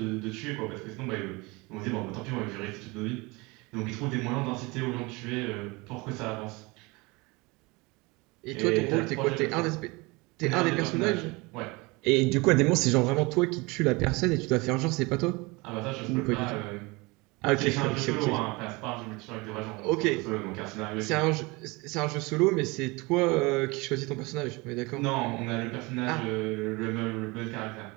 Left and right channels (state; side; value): quieter; left; 25.1 dB